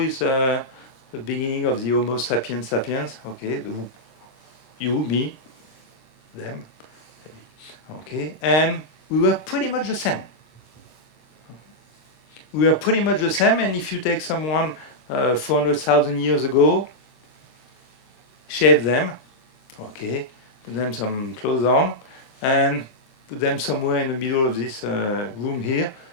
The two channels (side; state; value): right; late; 26 ms